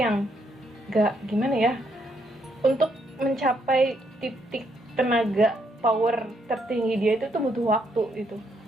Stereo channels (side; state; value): both; normal; correlation 0.74